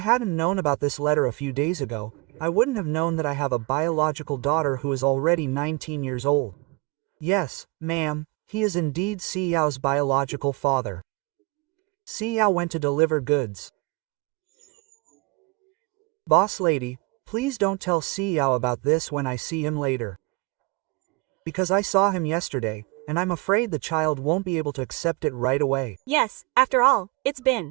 known about this letter a few days ago, I wouldn't have known that I have a biological daughter who is already 19 years old. Yes, ma'am, he is indeed Xiao's biological father. Xiao went to deliver goods. Boss lady, please don't tell Xiao about this when I see him later. Because I saw him yesterday, and I'm afraid the child won't be able to accept it right away. Yes, after all, it's been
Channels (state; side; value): quieter; left; 26.3 dB